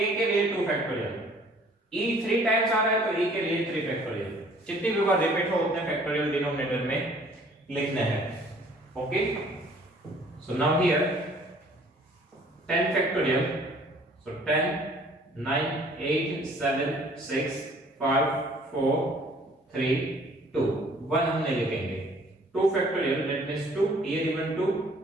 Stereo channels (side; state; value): both; normal; correlation 0.56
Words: के लिए 2 फैक्टोरियल, E 3 टाइम्स आ रहा है तो E के लिए 3 फैक्टोरियल। जितनी भी बार रिपीट हो उतने फैक्टोरियल डिनोमिनेटर में लिखने हैं। Okay, so now here 10 factorial, so 10 9 8 7 6 5 4 3 2, 1 हम नहीं लिखेंगे, 2 factorial, that means 2 here even 2,